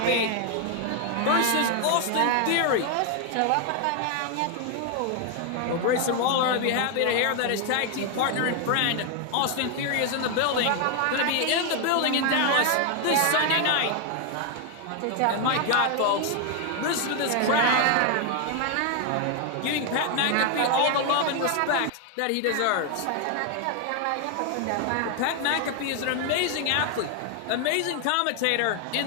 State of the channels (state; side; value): different; both; correlation 0.01